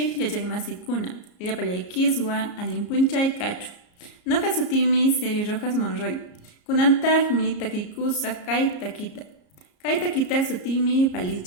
yachaymasikuna, llapallaykiswan allinpunchay kachu. Noqa sutimi Seri Rojas Monroy. Kunantajmi takiykusaq kay takita. Kay takita sutimi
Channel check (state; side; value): late; right; 34 ms